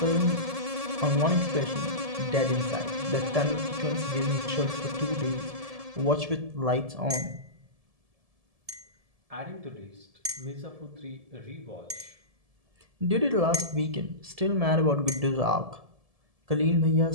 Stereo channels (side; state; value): left; late; 1.7 ms